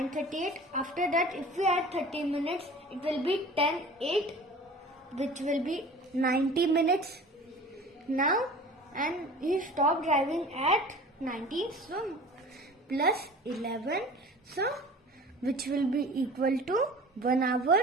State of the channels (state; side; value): normal; both; correlation 0.41